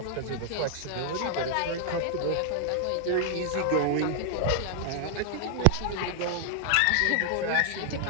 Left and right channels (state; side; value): different; both; correlation -0.01